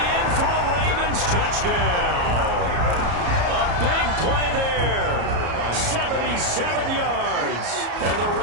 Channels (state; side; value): late; left; 34 ms